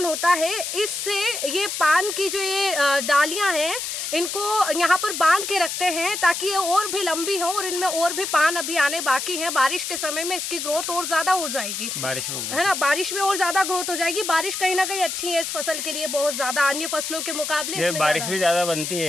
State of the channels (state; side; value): noise; left; hiss, 4 dB below the sound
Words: होता है। इससे ये पान की जो ये डालियां हैं इनको यहाँ पर बांध के रखते हैं ताकि ये और भी लंबी हो और इनमें और भी पान अभी आने बाकी हैं। बारिश के समय में इसकी ग्रोथ और ज्यादा हो जाएगी, है ना, बारिश में और ज्यादा ग्रोथ हो जाएगी। बारिश कहीं ना कहीं अच्छी है इस फसल के लिए, बहुत ज्यादा अन्य फसलों के मुकाबले बारिश भी ज्यादा बनती